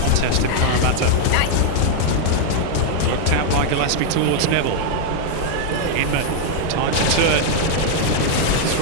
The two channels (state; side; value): different; both; correlation 0.00